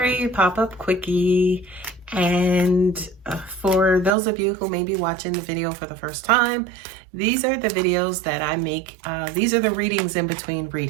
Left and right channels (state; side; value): drops out; left; at 4.1 s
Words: pop-up quickie. And for those of you who may be watching the video for the first time, these are the videos that I make. These are the readings in between